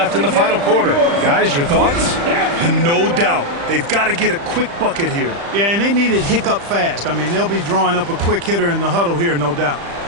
in the final quarter. Guys, your thoughts? And no doubt, they've got to get a quick bucket here. Yeah, and they need it hiccup fast. I mean, they'll be drawing up a quick hitter in the huddle here, no doubt.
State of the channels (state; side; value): late; left; 35 ms